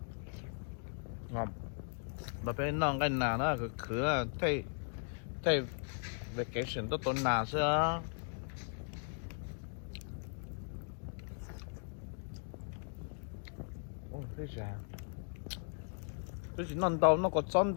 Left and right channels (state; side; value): silent; right; 53 dB below the other